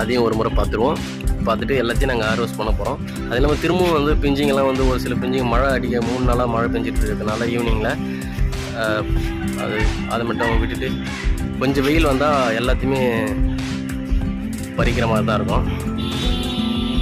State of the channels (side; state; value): both; identical; correlation 1.00